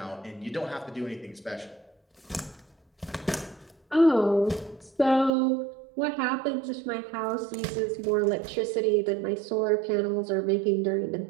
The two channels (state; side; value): drops out; left; at 5.3 s